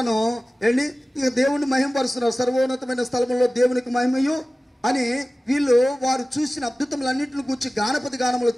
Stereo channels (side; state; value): both; normal; correlation 0.97